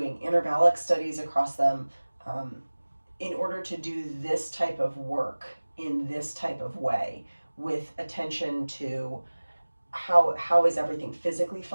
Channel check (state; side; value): inverted; both; correlation -1.00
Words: intervallic studies across them in order to do this type of work in this type of way, with attention to how is everything physically